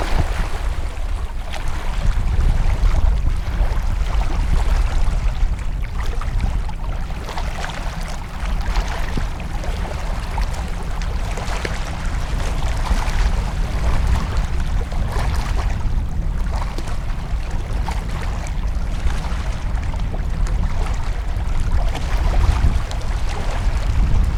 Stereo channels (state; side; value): identical; both; correlation 1.00